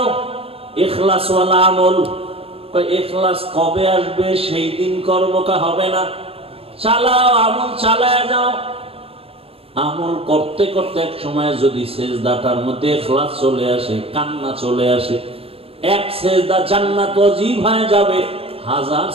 ইখলাসওয়ালা আমল। ইখলাস কবে আসবে? সেই দিন করবো, কা হবে না? চালাও, আমল চালায় যাও। আমল করতে করতে এক সময় যদি সেজদাটার মধ্যে ইখলাস চলে আসে, কান্না চলে আসে, এক সেজদা জান্নাত ওয়াজিব হয়ে যাবে, 1000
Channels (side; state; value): left; late; 0.28 ms